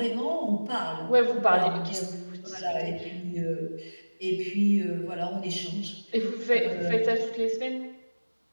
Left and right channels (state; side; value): inverted; both; correlation -1.00